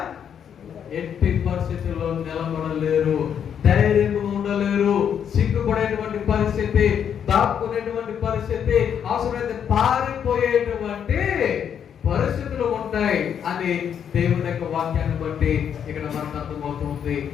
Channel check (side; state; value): right; quieter; 8.4 dB